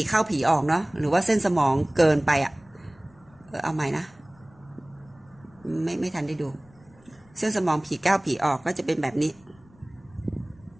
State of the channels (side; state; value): left; noise; rumble, 28 dB below the sound